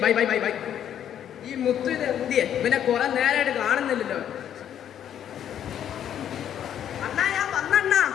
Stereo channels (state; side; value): quieter; right; 9.9 dB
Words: ബൈ ബൈ ബൈ ബൈ. ഈ മുത്തു ഇത് എന്തിയെ? പിന്നെ കുറെ നേരമായിട്ട് കാണുന്നില്ലല്ലോ.